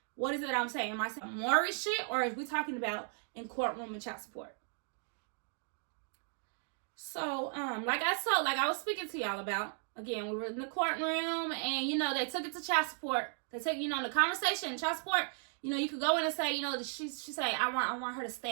what is it I'm saying? Am I saying Maury shit, or is we talking about in courtroom and child support? So, like I was speaking to y'all about, again, we were in the courtroom, and they took it to child support. They take, the conversation, child support. You could go in and say, she say, I want her to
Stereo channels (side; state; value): left; silent; 54 dB below the other